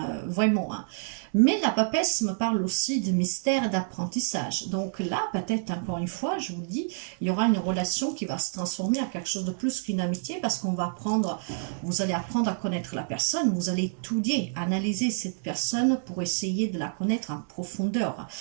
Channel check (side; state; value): left; silent; digital silence